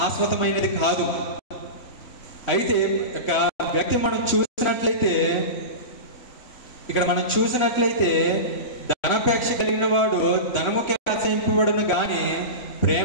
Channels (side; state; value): right; late; 4.0 ms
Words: కాదు. అయితే వ్యక్తి మనం చూసినట్లయితే ధనాపేక్ష కలిగిన వాడు ధనముకే ఆశయింపబడును గాని